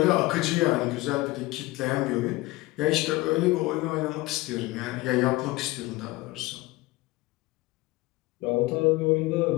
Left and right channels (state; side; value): quieter; right; 20.5 dB